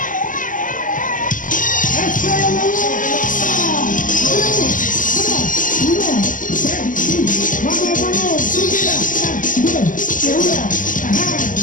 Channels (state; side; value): late; right; 0.38 ms